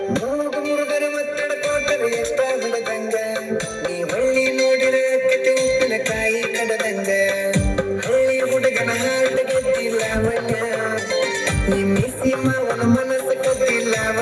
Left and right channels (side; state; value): both; identical; correlation 1.00